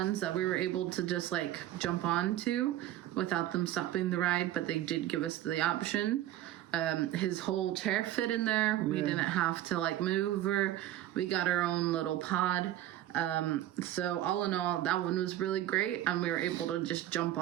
that we were able to just like jump onto without them stopping the ride, but they did give us the option. His whole chair fit in there. We didn't have to like move, or we got our own little pod. So all in all, that one was really great, and we were able to just jump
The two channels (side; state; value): left; quieter; 13.4 dB